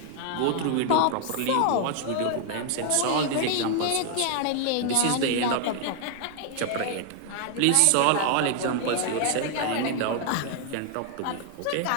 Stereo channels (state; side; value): different; both; correlation 0.00